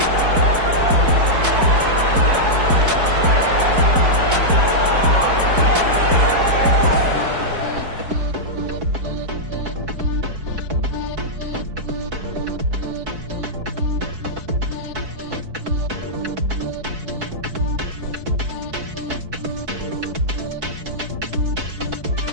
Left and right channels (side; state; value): left; late; 4.6 ms